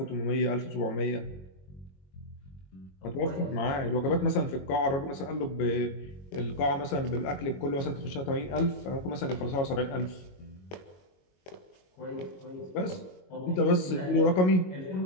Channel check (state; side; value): late; right; 22 ms